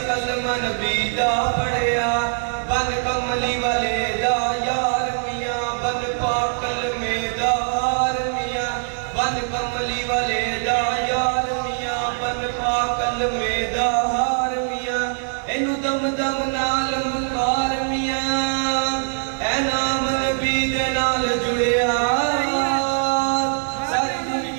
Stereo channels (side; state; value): left; silent; 64 dB below the other